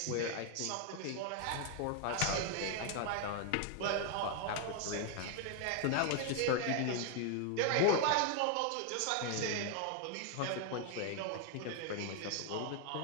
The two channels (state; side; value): different; both; correlation 0.00